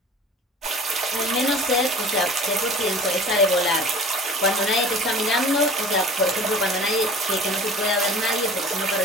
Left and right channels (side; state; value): both; normal; correlation 0.43